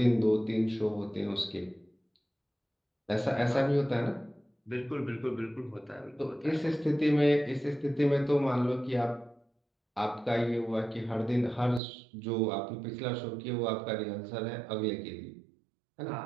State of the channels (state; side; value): drops out; left; at 11.8 s